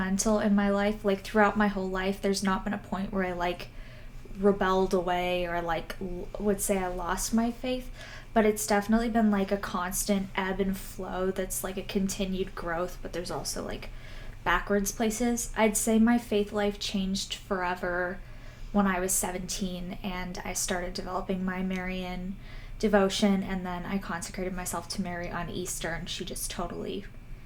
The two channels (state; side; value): identical; both; correlation 1.00